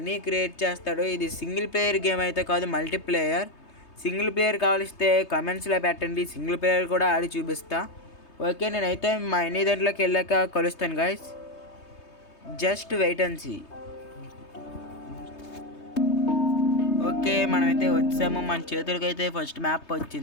క్రియేట్ చేస్తాడు. ఇది సింగిల్ ప్లేయర్ గేమ్ అయితే కాదు, మల్టీప్లేయర్. సింగిల్ ప్లేయర్ కావలిస్తే కమెంట్స్లో పెట్టండి, సింగిల్ ప్లేయర్ కూడా ఆడి చూపిస్తా. ఓకే, నేనైతే మనీ దాంట్లోకి వెళ్ళాక కలుస్తాను guys. Just wait and see. Okay, మనమైతే వచ్చాము. మన చేతులకి అయితే ఫస్ట్ మ్యాప్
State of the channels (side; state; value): right; late; 3.2 ms